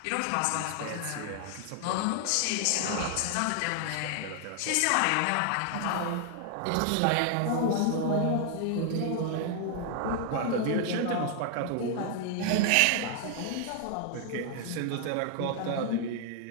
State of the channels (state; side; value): different; both; correlation 0.00